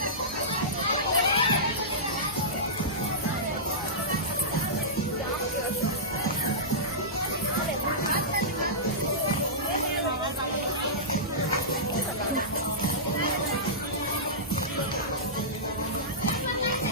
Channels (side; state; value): both; normal; correlation -0.17